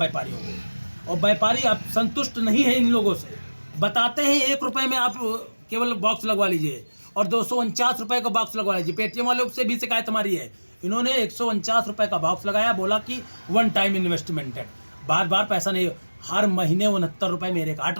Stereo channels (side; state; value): both; inverted; correlation -1.00